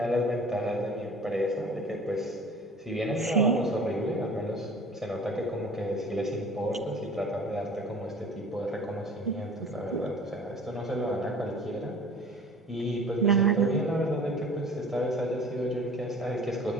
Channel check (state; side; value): normal; both; correlation 0.45